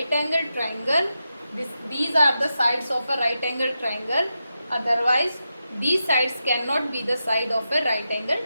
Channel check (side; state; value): both; inverted; correlation -0.89